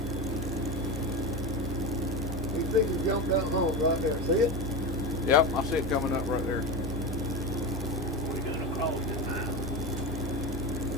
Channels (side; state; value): both; normal; correlation 0.21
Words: These things jumped down home right there, see it? Yep, I see it coming up right there. We're going to cross it now.